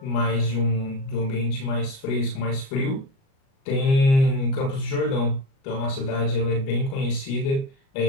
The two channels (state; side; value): late; right; 37 ms